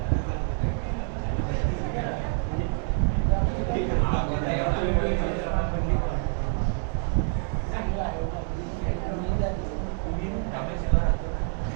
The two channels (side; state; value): left; quieter; 39.7 dB